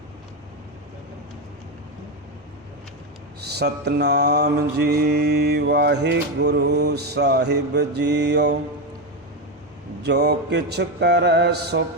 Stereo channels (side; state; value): both; normal; correlation 0.11